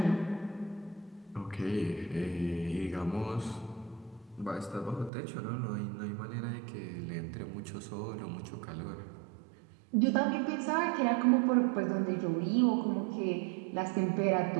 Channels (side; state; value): left; drops out; at 5.1 s